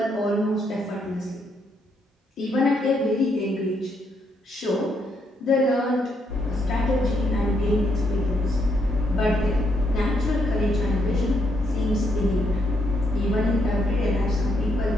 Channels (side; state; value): both; normal; correlation 0.76